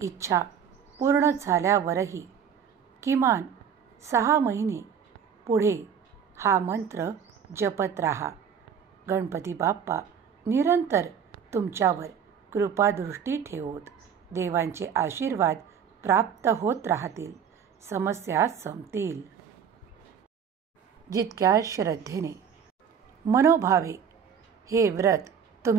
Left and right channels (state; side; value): quieter; left; 7.5 dB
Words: इच्छा पूर्ण झाल्यावरही किमान 6 महिने पुढे हा मंत्र जपत राहा. गणपती बाप्पा निरंतर तुमच्यावर कृपादृष्टी ठेवोत. देवांचे आशीर्वाद प्राप्त होत राहतील. समस्या संपतील. जितक्या श्रद्धेने, मनोभावे हे व्रत